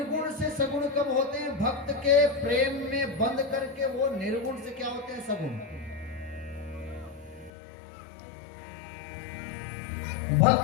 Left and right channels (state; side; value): drops out; right; at 7.5 s